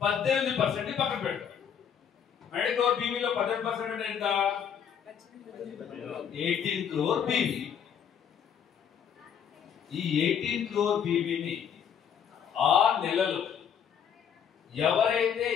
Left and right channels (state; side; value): quieter; right; 8.0 dB